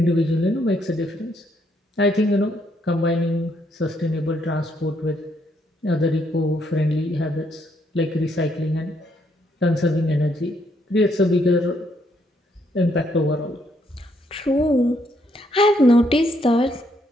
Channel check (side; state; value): both; normal; correlation 0.73